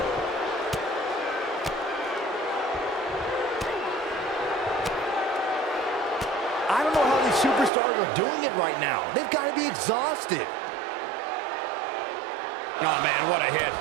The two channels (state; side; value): drops out; left; at 7.7 s